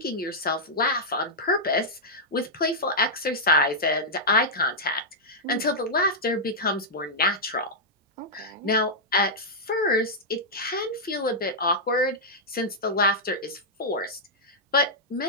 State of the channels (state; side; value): normal; both; correlation -0.08